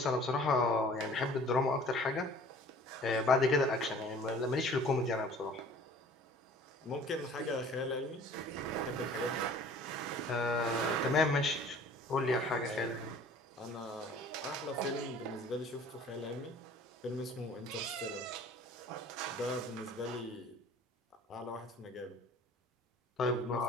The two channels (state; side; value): normal; both; correlation 0.49